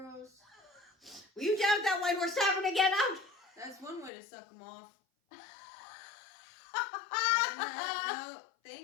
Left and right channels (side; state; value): right; drops out; at 4.1 s